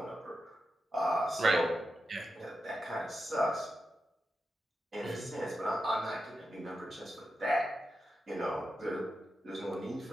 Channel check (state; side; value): normal; both; correlation 0.89